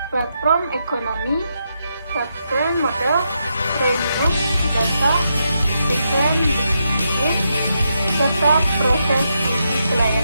platform ekonomi, software model, premium, data, desain bisnis, serta proses uji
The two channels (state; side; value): inverted; both; correlation -0.82